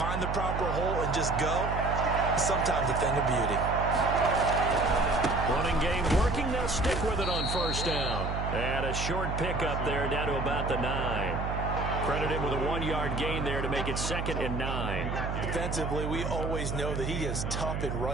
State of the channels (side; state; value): right; noise; hum, 3 dB below the sound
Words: the proper hole, and just go, it's sometimes a thing of beauty. Running game working. They'll stick with it on first down. And a short pickup there down to about the 9. Credit him with a 1-yard gain there to make it 2nd and 9. Defensively, we always know that he is tough in